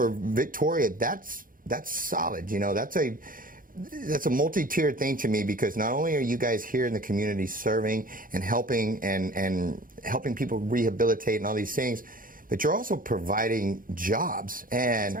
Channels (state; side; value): late; left; 0.40 ms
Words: Victoria, that's solid. You know, that's a multi-tiered thing to me, because not only are you guys here in the community serving and helping and helping people rehabilitate and all these things, but you're also providing jobs. And,